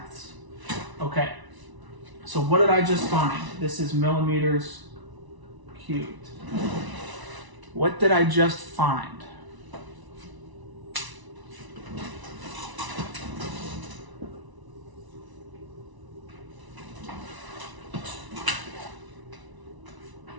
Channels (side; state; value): left; late; 1.0 ms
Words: Okay, so what did I just find? This is millimeters cubed. What did I just find?